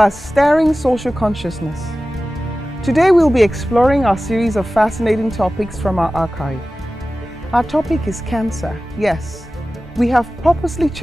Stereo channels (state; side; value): normal; both; correlation 0.96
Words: stirring social consciousness. Today we'll be exploring our series of fascinating topics from our archive. Our topic is cancer. Yes, we have purposely